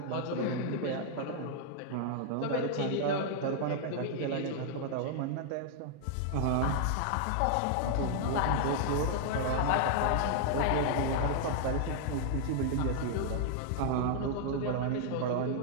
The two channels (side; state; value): both; different; correlation -0.01